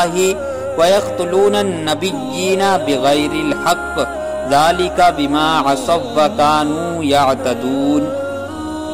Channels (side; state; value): both; identical; correlation 1.00